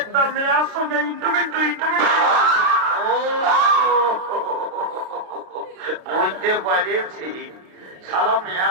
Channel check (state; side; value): late; left; 33 ms